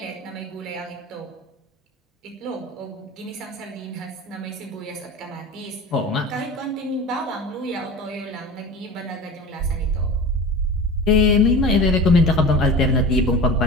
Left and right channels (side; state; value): both; normal; correlation 0.34